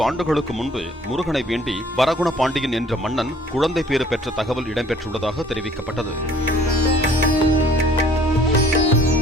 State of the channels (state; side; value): normal; both; correlation 0.55